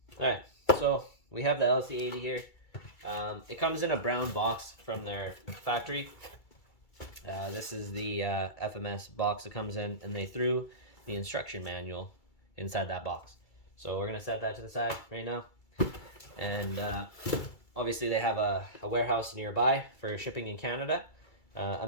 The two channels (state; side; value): late; right; 2.3 ms